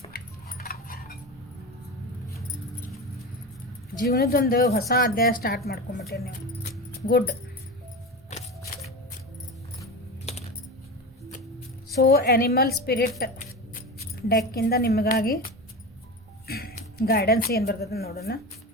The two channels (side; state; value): both; normal; correlation 0.25